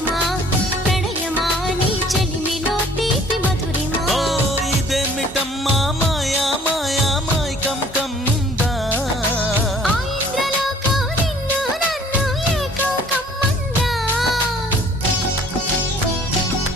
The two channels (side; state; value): both; normal; correlation 0.54